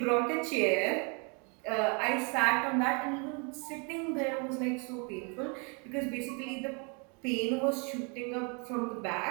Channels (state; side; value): quieter; left; 34.8 dB